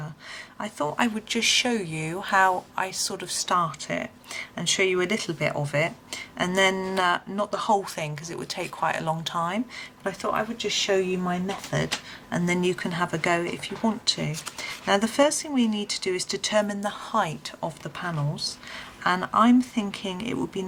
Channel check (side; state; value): both; identical; correlation 1.00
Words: I thought I would just show you how I sort of start it and show you a little bit of it, and then not the whole thing because it would take quite a long time, but I thought I would just show you my method and then you can have a go if you want to. Now the first thing we need to do is determine the height of the panels. And I'm thinking it would be